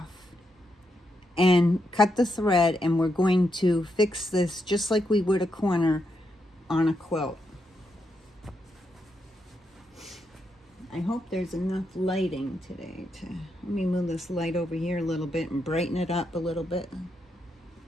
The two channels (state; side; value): normal; both; correlation 0.82